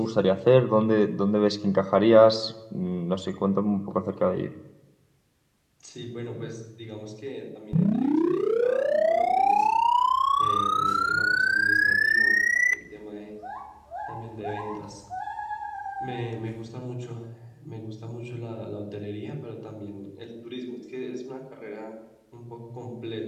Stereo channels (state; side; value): identical; both; correlation 1.00